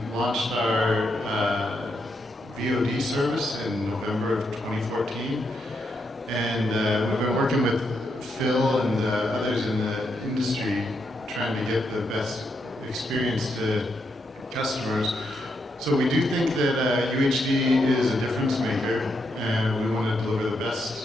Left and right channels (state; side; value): normal; both; correlation 0.80